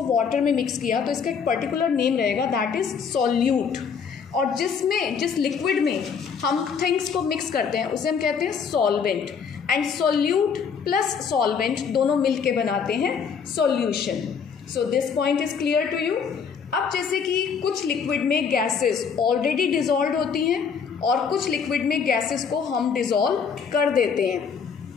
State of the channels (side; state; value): right; quieter; 6.4 dB